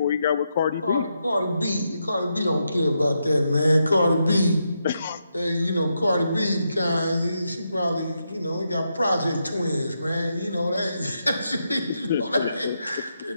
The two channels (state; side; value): inverted; both; correlation -0.83